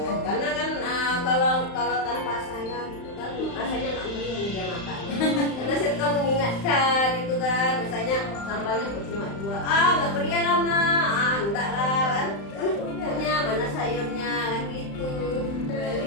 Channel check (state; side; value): late; right; 35 ms